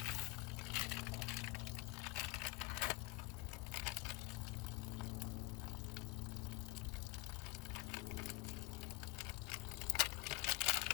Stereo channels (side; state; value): right; quieter; 23.4 dB